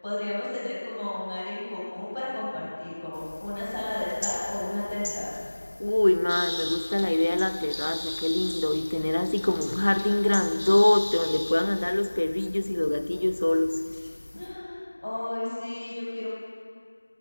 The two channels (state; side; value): inverted; both; correlation -1.00